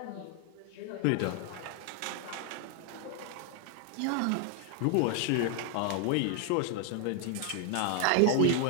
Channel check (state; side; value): different; both; correlation 0.00